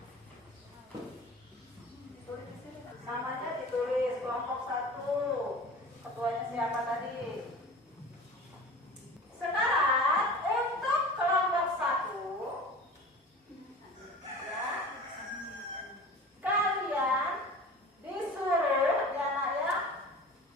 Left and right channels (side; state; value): both; normal; correlation 0.38